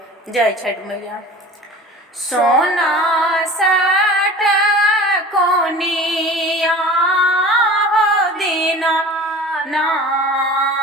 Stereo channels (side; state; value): both; normal; correlation 0.40